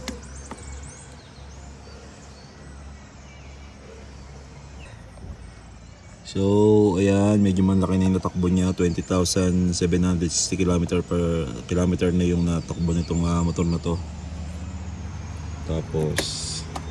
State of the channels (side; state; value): both; identical; correlation 1.00